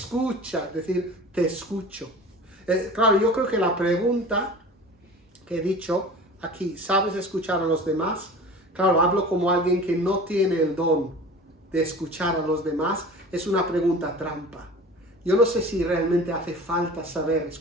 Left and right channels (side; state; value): both; normal; correlation 0.39